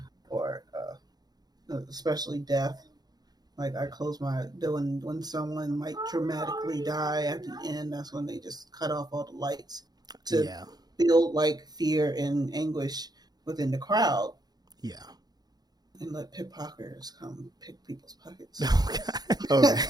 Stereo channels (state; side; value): late; left; 0.19 ms